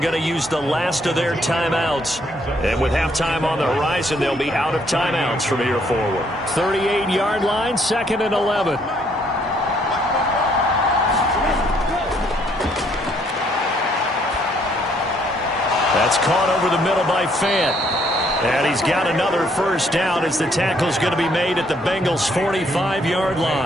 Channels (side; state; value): both; normal; correlation 0.68